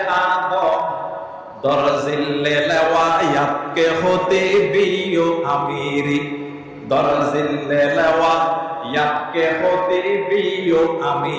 আদম দরজিল্লে লওয়ায়াতকে হতে বিও আমিরি দরজিল্লে লওয়ায়াতকে হতে বিও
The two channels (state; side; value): identical; both; correlation 1.00